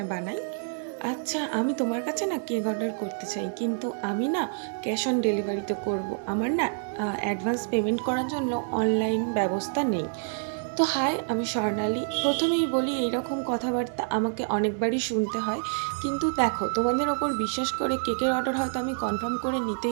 বানাই। আচ্ছা, আমি তোমার কাছে না কেক অর্ডার করতে চাই, কিন্তু আমি না ক্যাশ অন ডেলিভারিতে করব। আমার না অ্যাডভান্স পেমেন্ট করার জন্য অনলাইন ব্যবস্থা নেই। তো হাই, আমি স্বর্ণালী। প্রথমেই বলি, এইরকম কথাবার্তা আমাকে অনেকবারই শুনতে হয়। কিন্তু দেখো, তোমাদের ওপর বিশ্বাস করে কেকের অর্ডার হয়তো আমি কনফার্ম করে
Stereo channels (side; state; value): left; silent; digital silence